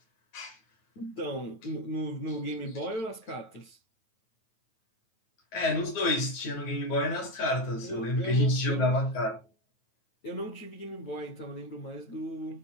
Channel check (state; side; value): late; right; 9.2 ms